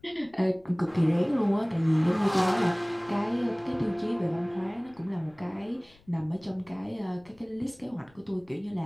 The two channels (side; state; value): left; noise; rumble, 29 dB below the sound